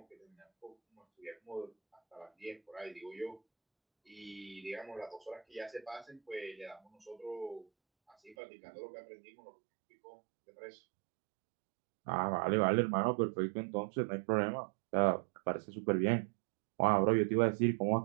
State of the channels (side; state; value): left; drops out; at 8.3 s